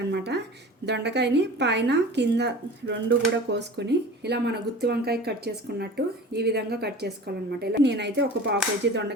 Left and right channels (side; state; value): both; normal; correlation 0.38